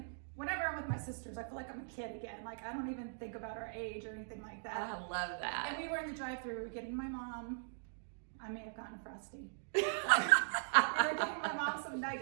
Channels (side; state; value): left; silent; digital silence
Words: whenever I'm with my sisters, I feel like I'm a kid again. Like, I don't even think about our age or anything like that. I love that. And we were in the drive-thru. We were getting my mom. I may have gotten a Frosty. We were getting my mom some